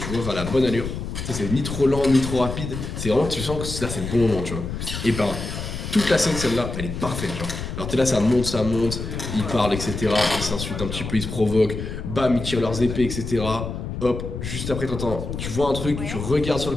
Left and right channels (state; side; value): noise; left; rumble, 6 dB below the sound